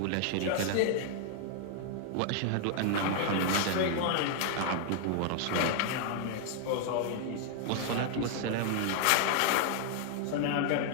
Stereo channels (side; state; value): both; different; correlation 0.00